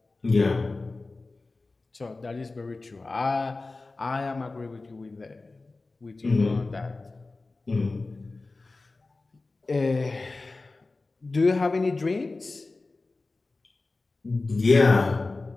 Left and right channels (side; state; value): right; quieter; 3.5 dB